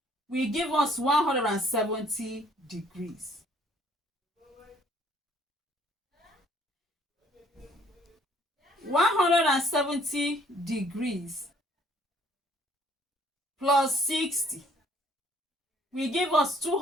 will give us 170 degrees. 170 degrees plus 60 will give us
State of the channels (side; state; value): both; normal; correlation 0.60